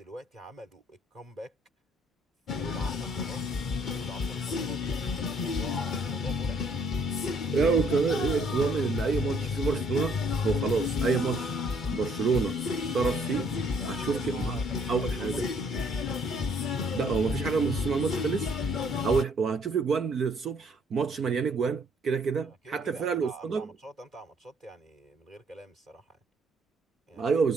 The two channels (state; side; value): normal; both; correlation 0.64